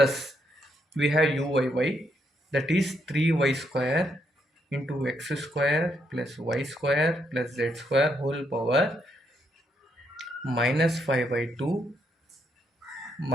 we have uyy, that is 3y square into x square plus y square plus z square whole power minus 5 by 2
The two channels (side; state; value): both; normal; correlation 0.76